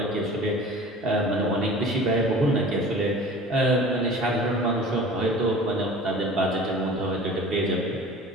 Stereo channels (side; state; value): both; normal; correlation 0.42